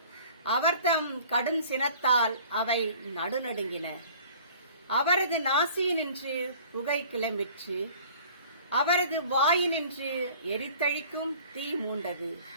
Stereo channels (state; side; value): inverted; both; correlation -0.49